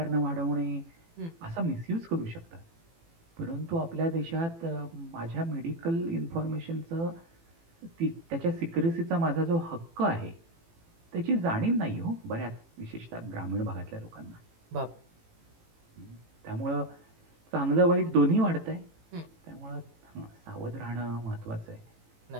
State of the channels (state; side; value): late; left; 18 ms